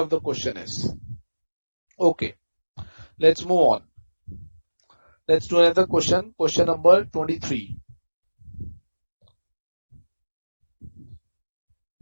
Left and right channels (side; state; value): both; inverted; correlation -1.00